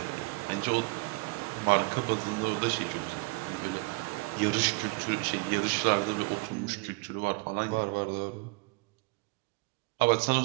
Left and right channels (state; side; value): quieter; left; 27.4 dB